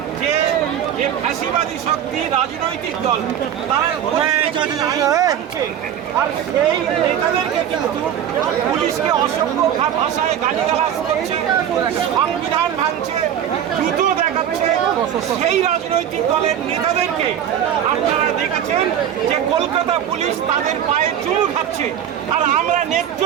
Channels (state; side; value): quieter; left; 9.7 dB